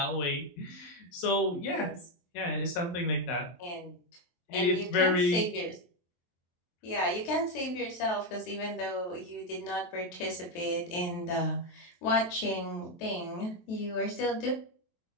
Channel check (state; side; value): late; right; 23 ms